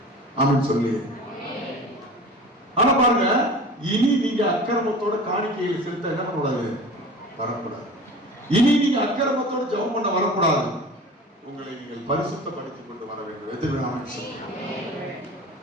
ஆமென் சொல்லி. ஆனா பாருங்க, இனி நீங்க அக்கிரமத்தோட காணிக்கையை செலுத்த என்ன பண்ணக்கூடாது? வரக்கூடாது. இனி நீங்க அக்கிரமத்தோட ஜெபம் பண்ண வரக்கூடாது. உங்களை நீங்கள் பரிசுத்தப்படுத்திக் கொண்டு வர வேண்டும். எதிர்ப்பு சொல்லுங்க.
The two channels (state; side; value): normal; both; correlation 0.38